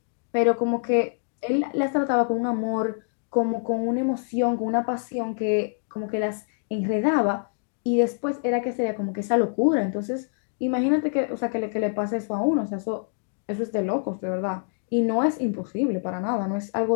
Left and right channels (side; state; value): right; silent; digital silence